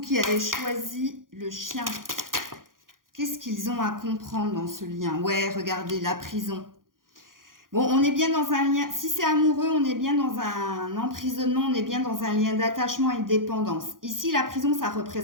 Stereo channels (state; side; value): late; left; 0.90 ms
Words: avez choisi le chien, qu'est-ce qu'ils ont à comprendre dans ce lien? Ouais, regardez, la prison. Bon, on est bien dans un lien, si c'est amoureux, on est bien dans un emprisonnement, on est bien dans un lien d'attachement et de dépendance. Ici, la prison, ça